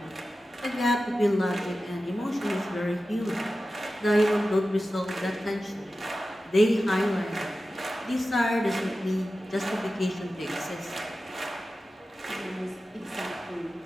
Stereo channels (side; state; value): both; normal; correlation 0.94